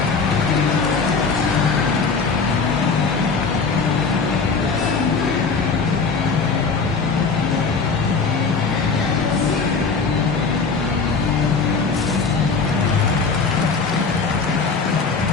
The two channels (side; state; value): right; quieter; 4.7 dB